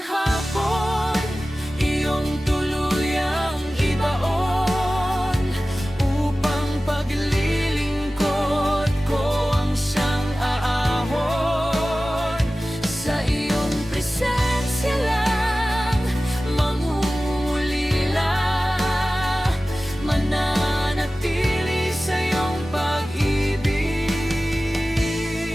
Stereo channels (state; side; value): normal; both; correlation 0.96